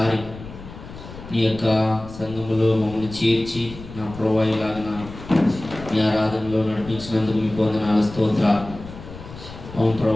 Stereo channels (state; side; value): noise; left; rumble, 14 dB below the sound